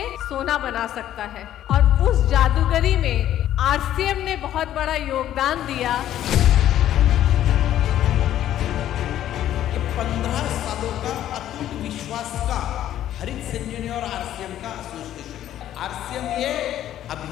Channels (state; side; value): quieter; right; 12.0 dB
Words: सोना बना सकता है। और उस जादूगरी में आरसीएम ने बहुत बड़ा योगदान दिया। 15 सालों का अटूट विश्वास का हरित संजीवनी और आरसीएम का एसोसिएशन है। आरसीएम ये